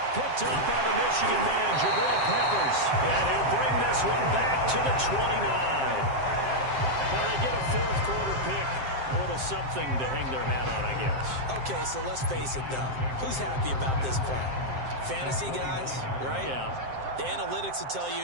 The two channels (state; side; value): late; left; 7.6 ms